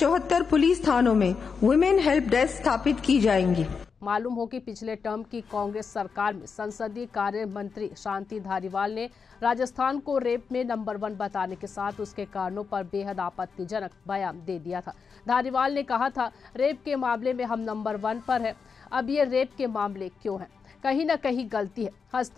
पुलिस थानों में वुमेन हेल्प डेस्क स्थापित की जाएंगी। मालूम हो कि पिछले टर्म की कांग्रेस सरकार में संसदीय कार्य मंत्री शांति धारीवाल ने राजस्थान को रेप में नंबर 1 बताने के साथ उसके कारणों पर बेहद आपत्तिजनक बयान दे दिया था। धारीवाल ने कहा था, रेप के मामले में हम नंबर 1 पर है। अब ये रेप के मामले क्यों हैं? कहीं ना कहीं गलती है।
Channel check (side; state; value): right; quieter; 5.6 dB